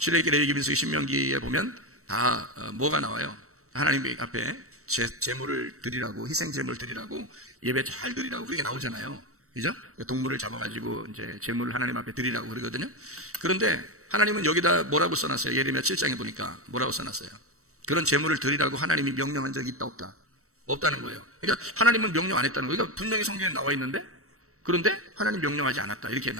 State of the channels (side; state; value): left; late; 0.64 ms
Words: 레위기, 민수기, 신명기에 보면 다 뭐가 나와요? 하나님 앞에 제물을 드리라고, 희생 제물을 드리라고, 예배 잘 드리라고 그게 나오잖아요. 그죠? 동물을 잡아가지고 이제 제물을 하나님 앞에 드리라고 그러거든요. 그런데 하나님은 여기다 뭐라고 써놨어요? 예레미야 7장에 보니까 뭐라고 써놨어요? 그런 제물을 드리라고 하나님이 명령한 적이 있다 없다? 없다는 거예요. 그러니까 하나님은 명령 안 했다는 거예요. 그러니까 분명히 성경에 나와 있는데 그런데 하나님 명령하지 않았다 이렇게